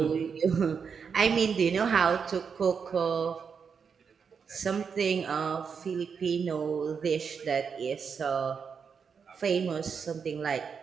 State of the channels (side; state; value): left; quieter; 6.2 dB